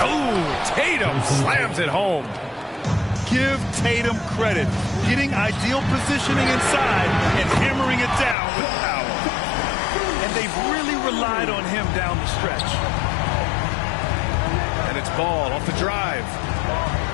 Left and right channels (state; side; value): drops out; right; at 8.3 s